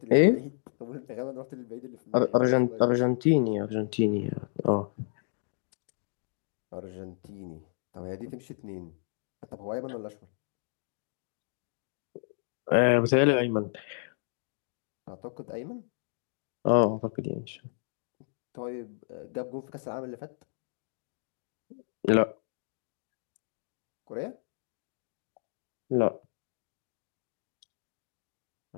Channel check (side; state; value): right; silent; digital silence